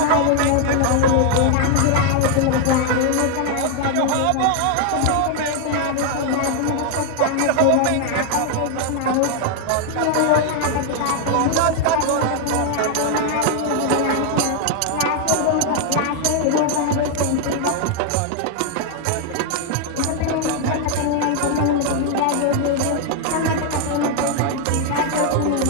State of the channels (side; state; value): both; different; correlation 0.00